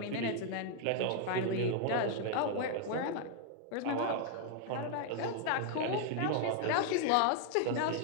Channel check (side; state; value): both; different; correlation 0.00